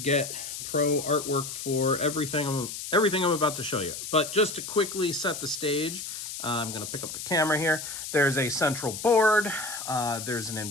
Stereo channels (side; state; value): left; noise; hiss, 7 dB below the sound